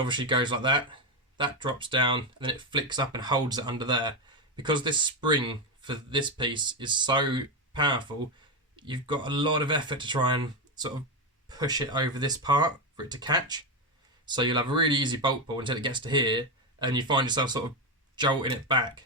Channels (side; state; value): both; normal; correlation 0.10